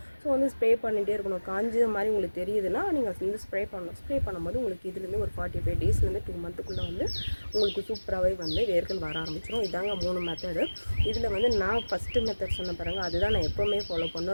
ஸோ வந்து ஸ்ப்ரே பண்ணிகிட்டே இருக்கணும். காஞ்ச மாதிரி உங்களுக்கு தெரியுதுன்னா நீங்கள் வந்து ஸ்ப்ரே பண்ணணும். ஸ்ப்ரே பண்ணும்போது உங்களுக்கு இதுலேருந்து ஒரு 45 டேஸ்லேருந்து 2 மந்த்துக்குள்ளே வந்து உங்களுக்கு சூப்பராகவே வந்து வேர்கள் வர ஆரம்பிச்சிடும். இதாங்க 3 மெத்தடு. இதில் வந்து நான் ஃபஸ்ட்டு மெத்தட் சொன்ன பாருங்கள், அதுதான் நான் எப்போவுமே ஃபாலோ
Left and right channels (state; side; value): inverted; both; correlation -1.00